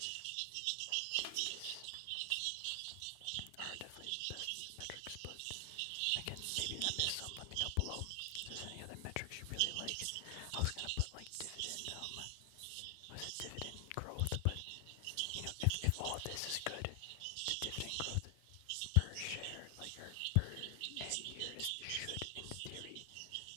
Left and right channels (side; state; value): both; different; correlation 0.00